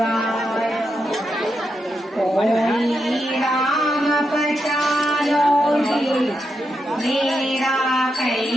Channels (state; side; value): normal; both; correlation 0.85